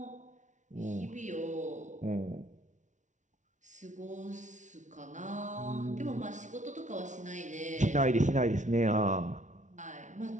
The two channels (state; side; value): late; left; 0.36 ms